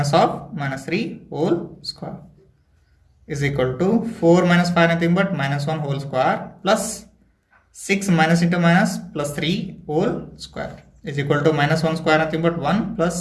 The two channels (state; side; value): identical; both; correlation 1.00